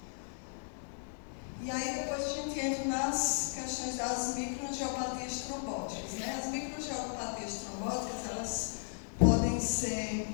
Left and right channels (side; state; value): right; silent; digital silence